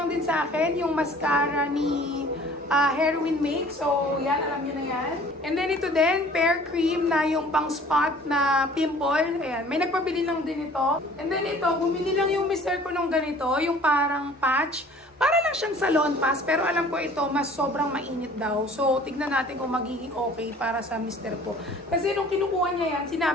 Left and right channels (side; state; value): both; normal; correlation 0.49